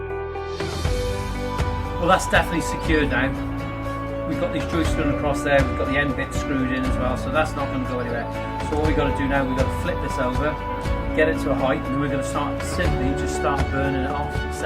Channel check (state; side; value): identical; both; correlation 1.00